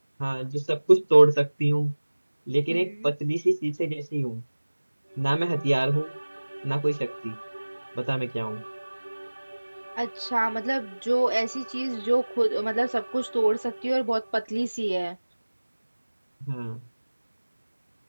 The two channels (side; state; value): both; inverted; correlation -1.00